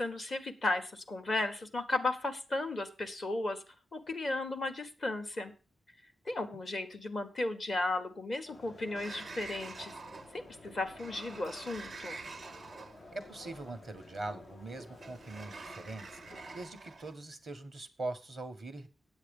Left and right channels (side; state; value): both; normal; correlation 0.86